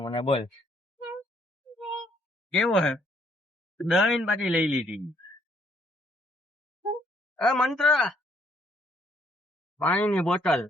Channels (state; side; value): normal; both; correlation 0.67